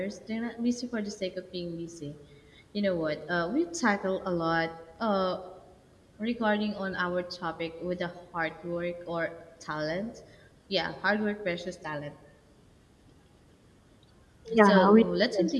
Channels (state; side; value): identical; both; correlation 1.00